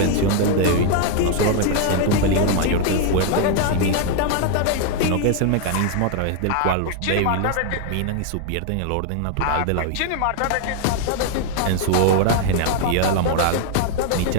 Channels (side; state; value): both; different; correlation 0.00